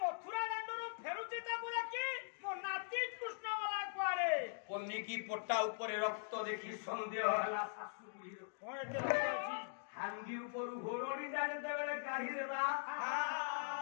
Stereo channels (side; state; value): right; silent; digital silence